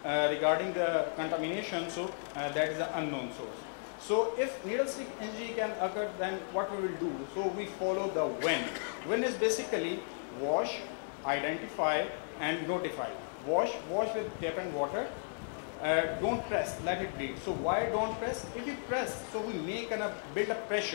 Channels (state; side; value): silent; right; digital silence